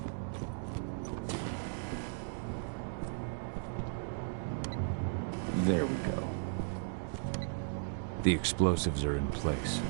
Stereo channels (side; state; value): left; silent; digital silence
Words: There we go. The explosives are in place.